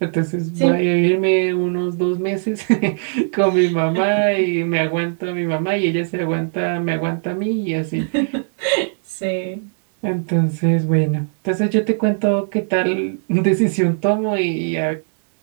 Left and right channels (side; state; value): left; silent; digital silence